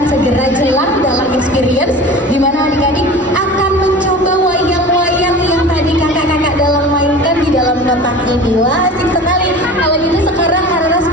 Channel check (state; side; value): normal; both; correlation 0.37